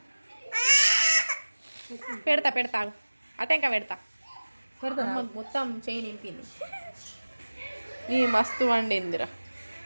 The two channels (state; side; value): inverted; both; correlation -1.00